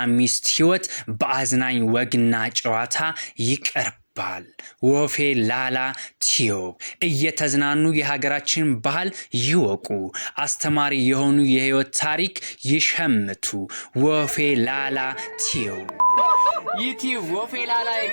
ሚስት ህይወት በአዝናኝ ወግና ጨዋታ ይቀርባል። ወፌላላ ቲዩብ እየተዝናኑ የሀገራችን ባህል ይወቁ፣ አስተማሪ የሆኑ የህይወት ታሪክ ይሸምቱ። ወፌላላ ቲዩብ ዩቲዩብ ወፌላላ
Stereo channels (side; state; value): both; inverted; correlation -1.00